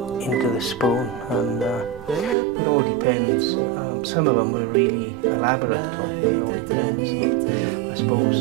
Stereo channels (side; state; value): left; drops out; at 2.4 s